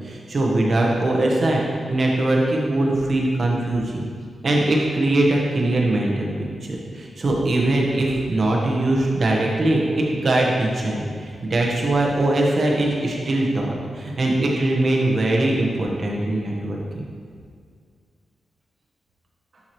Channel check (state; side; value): normal; both; correlation 0.91